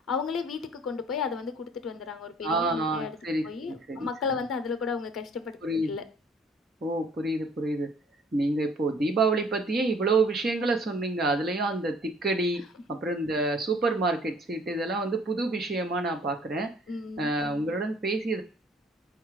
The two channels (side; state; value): both; normal; correlation 0.56